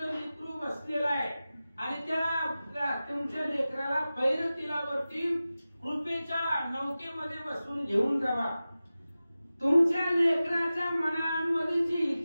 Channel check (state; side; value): inverted; both; correlation -0.95